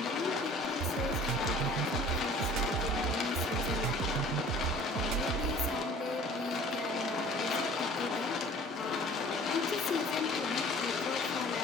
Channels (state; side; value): normal; both; correlation 0.48